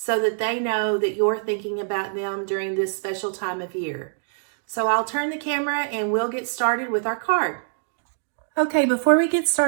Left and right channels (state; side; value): silent; left; digital silence